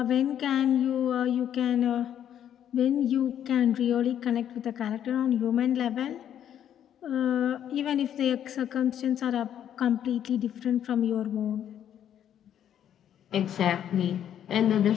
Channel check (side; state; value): right; quieter; 10.0 dB